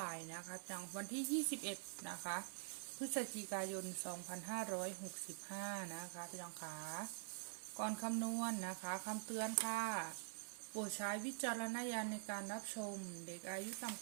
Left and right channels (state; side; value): silent; left; digital silence